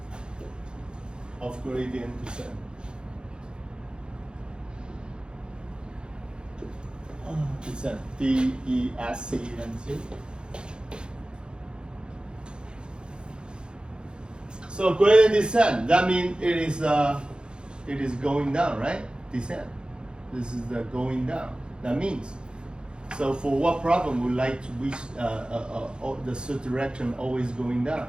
Of gradient descent. Descent. D-E-S-C-E-N-T. So gradient descent. That means it is going down, right? Descent. This is the going down. That means, so for what problem we like to reach the search direction always going down?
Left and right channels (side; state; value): left; late; 0.051 ms